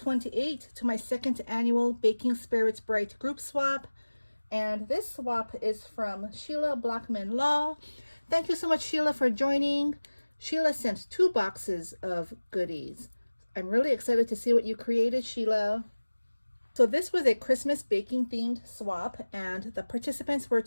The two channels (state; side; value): inverted; both; correlation -1.00